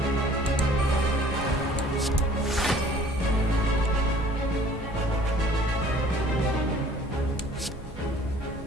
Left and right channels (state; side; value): normal; both; correlation 0.52